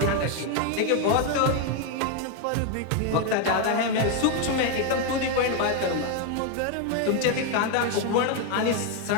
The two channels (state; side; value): different; both; correlation 0.01